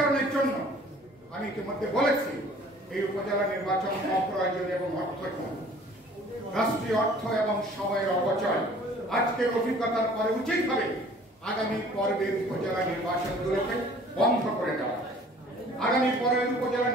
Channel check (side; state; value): both; normal; correlation 0.52